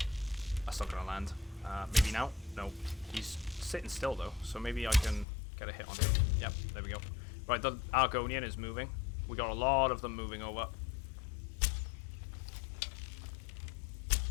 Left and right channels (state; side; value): drops out; right; at 5.2 s